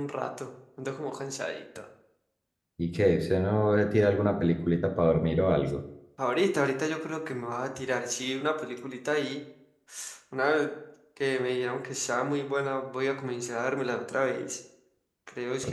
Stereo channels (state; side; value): identical; both; correlation 1.00